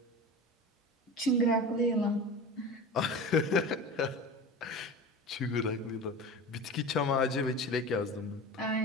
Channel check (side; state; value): both; normal; correlation 0.32